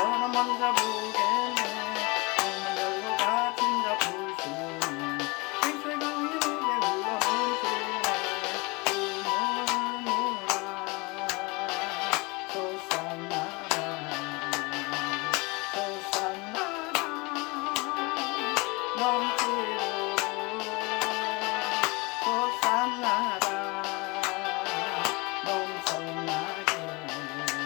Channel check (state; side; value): quieter; right; 26.4 dB